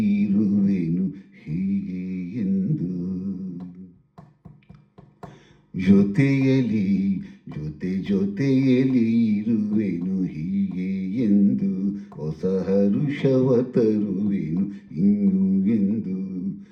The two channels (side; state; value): both; identical; correlation 1.00